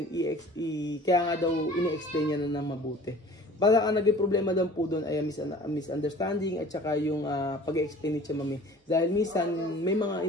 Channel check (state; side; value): normal; both; correlation 0.46